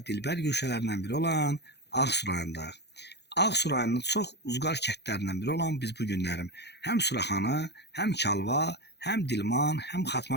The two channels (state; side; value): late; right; 0.49 ms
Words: dilbər güşələrindən biri olan Ağsu rayonundayıq. Ağsu rayonunun çox uzqar kəndlərindən biri olan biz bu günlərim həm Suraxanı, həm Kalva, həm Dilman, həm